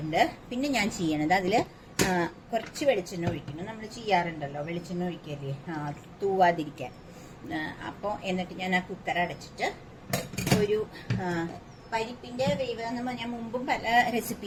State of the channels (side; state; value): both; identical; correlation 1.00